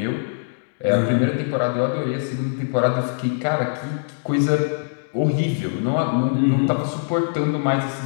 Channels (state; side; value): silent; right; digital silence